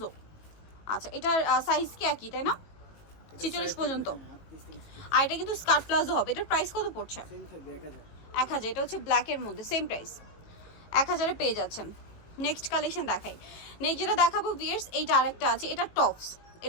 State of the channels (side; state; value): right; late; 18 ms